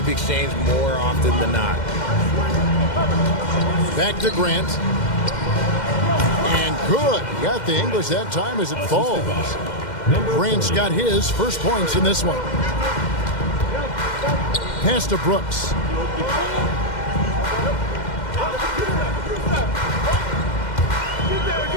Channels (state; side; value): late; right; 2.1 ms